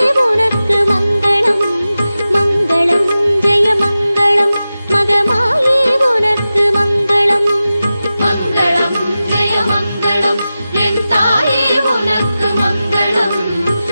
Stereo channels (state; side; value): inverted; both; correlation -0.94